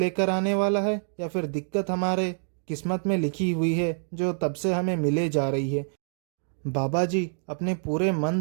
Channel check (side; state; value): left; silent; 60 dB below the other